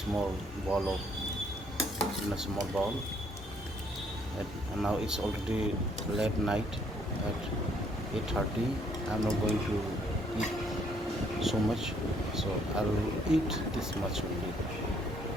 bowl. And now it's already late night at 8:30. I'm not going to eat so much, so I will eat this much only.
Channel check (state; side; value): normal; both; correlation 0.67